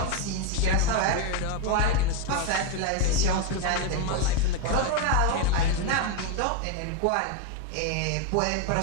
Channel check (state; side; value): different; both; correlation 0.01